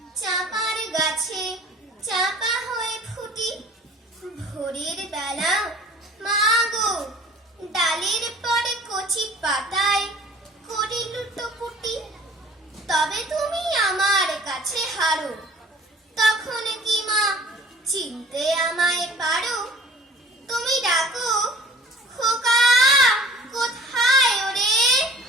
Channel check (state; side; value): normal; both; correlation 0.48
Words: চাপার গাছে চাপা হয়ে ফুটি, ভোরের বেলা মা গো ডালের পরে কচি পাতায় করি লুটোপুটি, তবে তুমি আমার কাছে হারো। তখন কি মা চিনতে আমায় পারো? তুমি ডাকো, খোকা কোথায় ওরে?